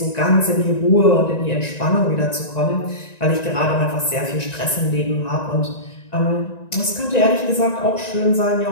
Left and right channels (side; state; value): right; late; 1.9 ms